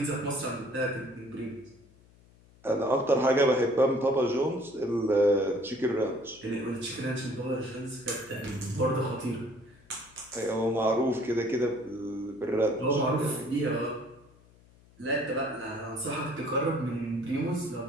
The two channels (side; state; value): left; noise; hum, 27 dB below the sound